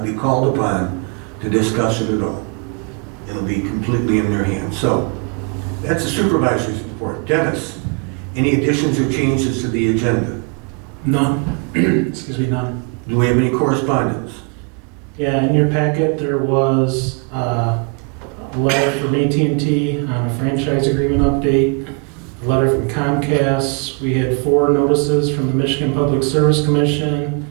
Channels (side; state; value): left; quieter; 35.7 dB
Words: be called upon to discuss it at all. It'll be completely in their hands. So that's the supervisor's report. Dennis, any additions or changes to the agenda? None. Excuse me, none. Do we have any correspondence? Yeah, in your packet there was a letter from AT&T on a franchise agreement update, a letter from Comcast. We had 4 notices from the Michigan Public Service Commission,